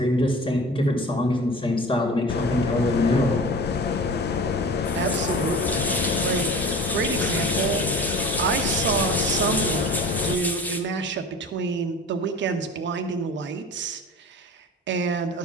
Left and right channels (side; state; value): both; normal; correlation 0.38